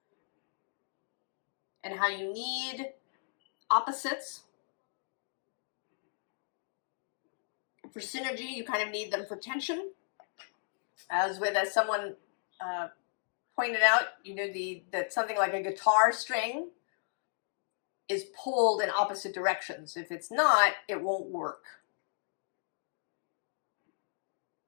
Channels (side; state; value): right; silent; digital silence